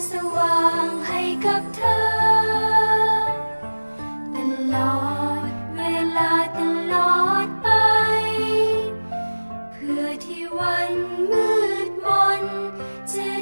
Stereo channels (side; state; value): both; inverted; correlation -1.00